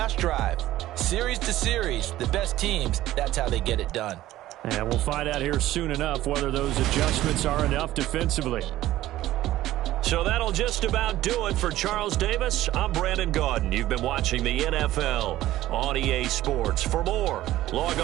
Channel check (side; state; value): left; quieter; 14.9 dB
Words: drive. Series to series, the best teams, that's how they get it done. And we'll find out here soon enough whether those adjustments are enough defensively. So that'll just about do it for Charles Davis. I'm Brandon Gaudin. You've been watching the NFL on EA Sports. For more, log